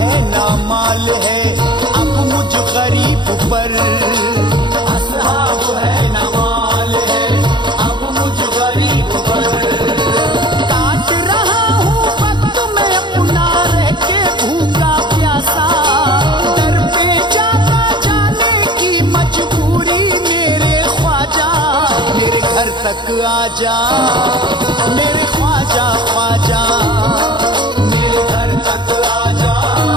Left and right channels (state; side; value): late; left; 0.22 ms